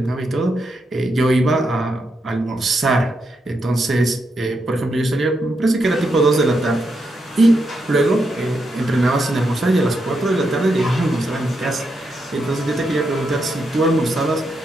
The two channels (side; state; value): both; normal; correlation 0.82